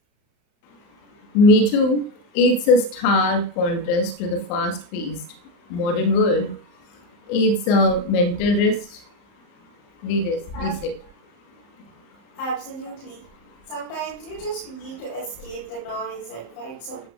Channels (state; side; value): late; right; 34 ms